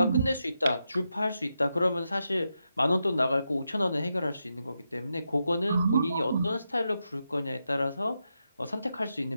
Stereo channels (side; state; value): both; inverted; correlation -0.86